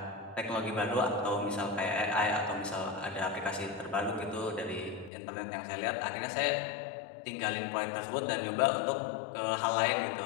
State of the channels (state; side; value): drops out; right; at 5.1 s